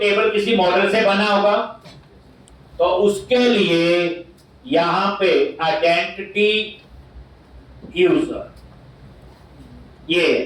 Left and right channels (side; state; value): both; identical; correlation 1.00